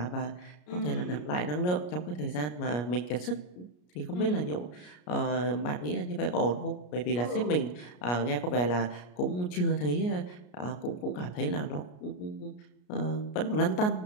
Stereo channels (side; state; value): right; late; 33 ms